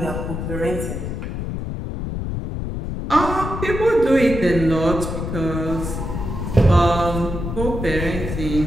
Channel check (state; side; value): noise; left; rumble, 5 dB below the sound